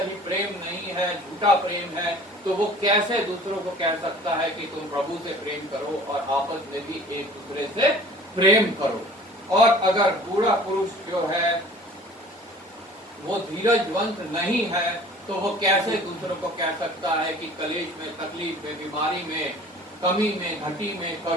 ही प्रेम नहीं है, झूठा प्रेम है, तो वो कैसे दूसरों को कह सकता है कि तुम प्रभु से प्रेम करो और आपस में भी एक दूसरे से प्रेम करो। और अगर बूढ़ा पुरुष जो है वो धीरजवंत नहीं है तो वो कैसे दूसरों को कह सकता है कि कलेश में, तकलीफ में, बीमारी में, कमी में, घटी में,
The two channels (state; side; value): normal; both; correlation 0.47